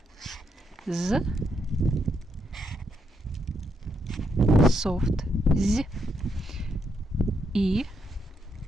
Z. Soft. Z. I.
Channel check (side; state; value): both; normal; correlation 0.78